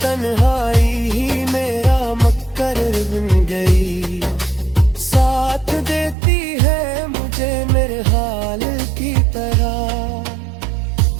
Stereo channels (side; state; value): left; drops out; at 6.2 s